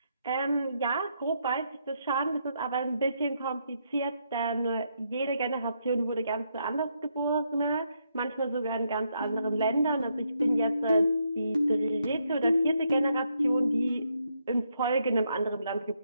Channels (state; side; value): inverted; both; correlation -0.77